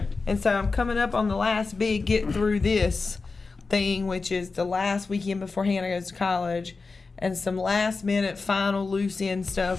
And so I'm coming up on the last big get through this thing, which is the last weekend before Hannah goes to college, and some last minute final loose end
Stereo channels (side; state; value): right; quieter; 4.2 dB